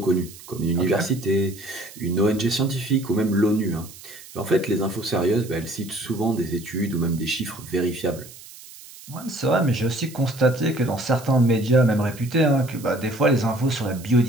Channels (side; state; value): right; noise; hiss, 18 dB below the sound